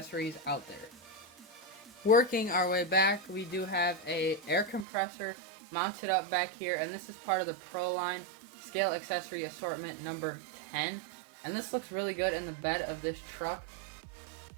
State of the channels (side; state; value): left; drops out; at 4.9 s